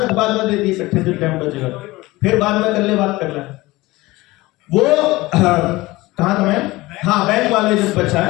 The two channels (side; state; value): right; quieter; 20.0 dB